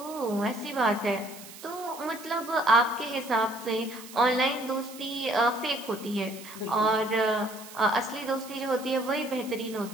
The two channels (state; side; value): noise; right; hiss, 16 dB below the sound